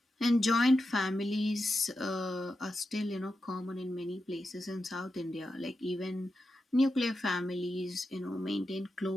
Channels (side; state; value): both; normal; correlation 0.89